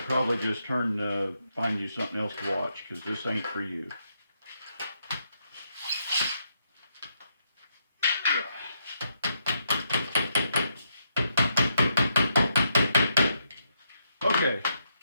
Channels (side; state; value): both; inverted; correlation -0.79